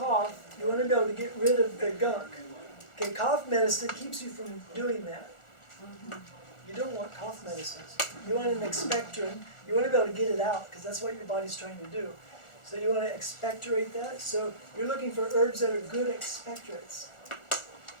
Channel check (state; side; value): late; right; 1.4 ms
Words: you want to be able to get rid of the gunk. Okay, cough medicine keeps you from doing that. You don't want cough medicines. You want an expectorant. You want to be able to get it out, because that's what your body's trying to do. So you want to expectorate that. So you're looking for herbs that are good expectorates.